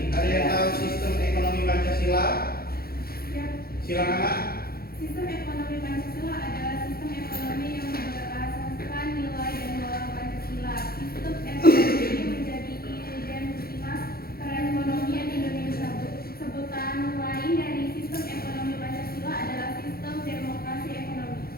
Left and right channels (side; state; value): right; late; 0.44 ms